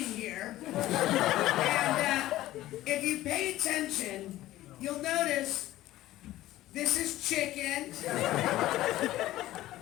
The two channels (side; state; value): right; quieter; 15.4 dB